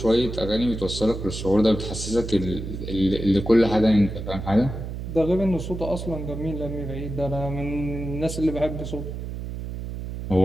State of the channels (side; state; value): right; noise; hum, 7 dB below the sound